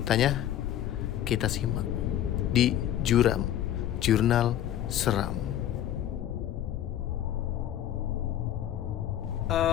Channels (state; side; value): quieter; right; 11.5 dB